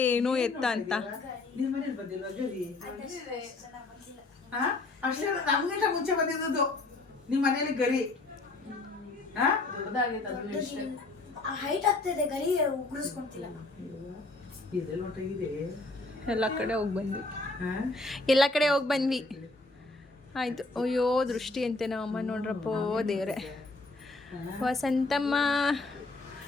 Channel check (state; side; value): quieter; right; 3.2 dB